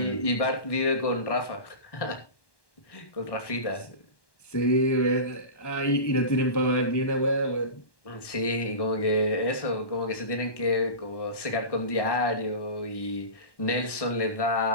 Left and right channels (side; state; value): right; late; 1.1 ms